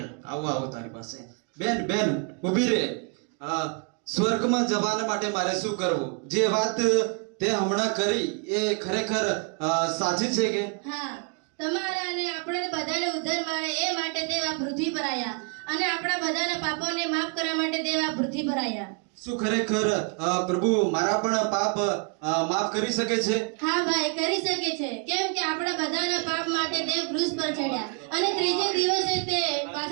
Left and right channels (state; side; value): quieter; left; 38.6 dB